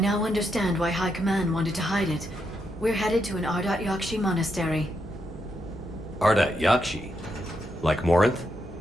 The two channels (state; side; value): normal; both; correlation 0.81